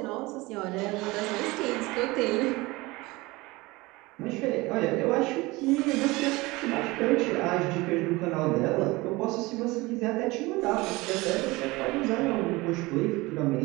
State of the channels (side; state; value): left; quieter; 22.0 dB